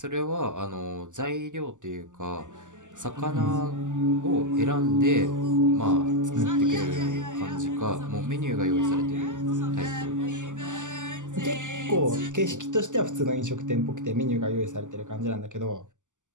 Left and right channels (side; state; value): left; late; 0.86 ms